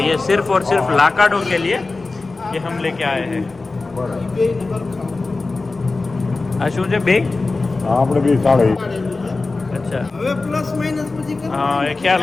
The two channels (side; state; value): right; quieter; 3.6 dB